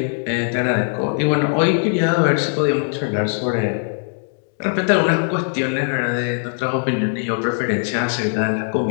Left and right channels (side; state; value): right; silent; digital silence